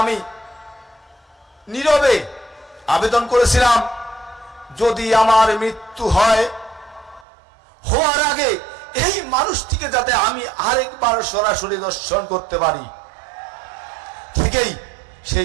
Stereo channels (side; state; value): left; drops out; at 7.2 s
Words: আমি নীরবে আবেদন করেছিলাম, যদি আমার মৃত্যু হয়, হওয়ার আগে এই মানুষটিকে যাতে আমি আরেকবার সরাসরি দর্শন করতে পারি। ঠিকই